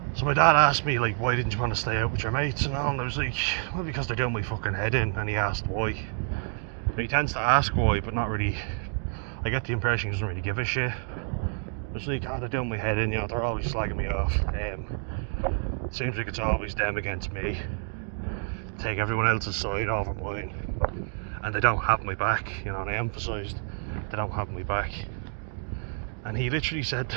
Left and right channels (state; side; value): silent; left; 56 dB below the other